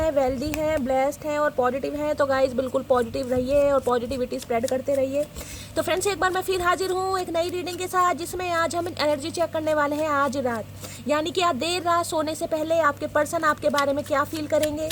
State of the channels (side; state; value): both; identical; correlation 1.00